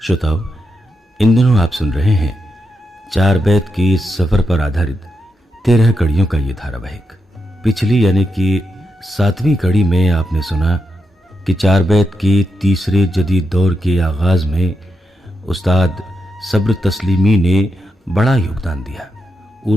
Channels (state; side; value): normal; both; correlation 0.86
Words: श्रोताओ, इन दिनों आप सुन रहे हैं चार बैत की सफर पर आधारित 13 कड़ियों का ये धारावाहिक। पिछली यानी कि 7वीं कड़ी में आपने सुना कि चार बैत की तीसरे जदीद दौर के आगाज में उस्ताद सब्र तस्लीमी ने बड़ा योगदान दिया।